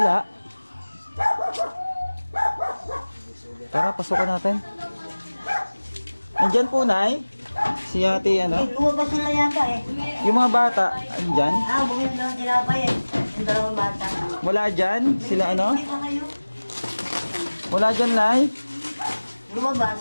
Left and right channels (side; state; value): both; inverted; correlation -1.00